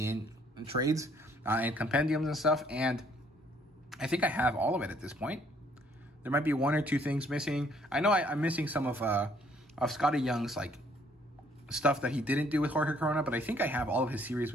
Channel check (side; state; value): both; normal; correlation 0.64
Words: trades and compendiums and stuff, and I think I have all of it at this point. There might be one or two things missing. I know I'm missing some of Scotty Young's like stuff that he didn't do with Jorge Corona, but I think I have all of his series